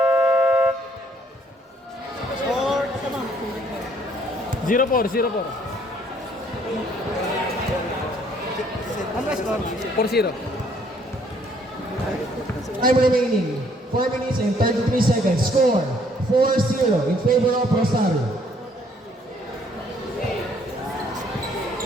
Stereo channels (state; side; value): normal; both; correlation 0.64